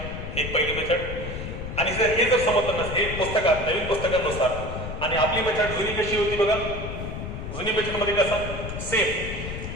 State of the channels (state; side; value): noise; left; rumble, 7 dB below the sound